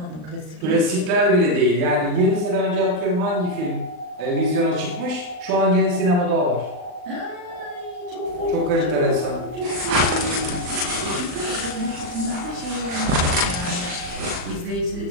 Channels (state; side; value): late; left; 39 ms